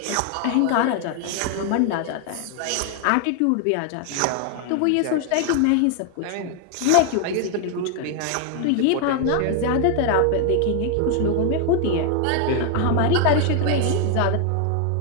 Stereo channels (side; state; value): both; different; correlation 0.00